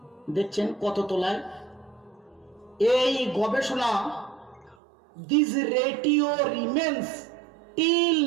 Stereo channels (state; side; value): drops out; left; at 4.8 s